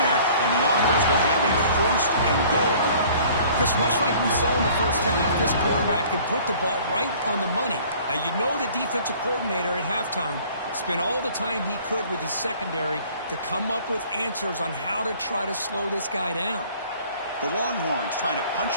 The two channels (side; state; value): both; inverted; correlation -0.52